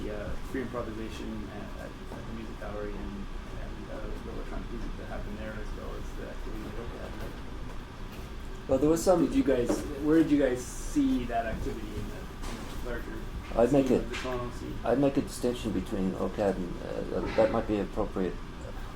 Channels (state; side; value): identical; both; correlation 1.00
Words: free improvisation at the music gallery and the electronic music that happened there, as well as the activity that OCAD had. Well, there was some. Where did you guys see that activity in the larger? I'd make a distinction between OCAD and that might be appropriate.